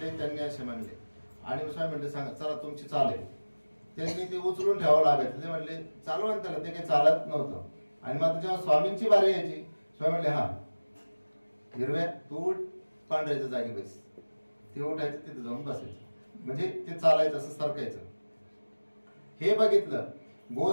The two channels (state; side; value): inverted; both; correlation -1.00